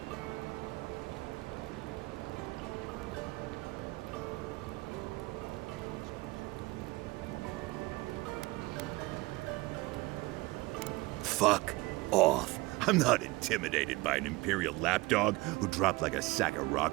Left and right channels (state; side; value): quieter; left; 22.1 dB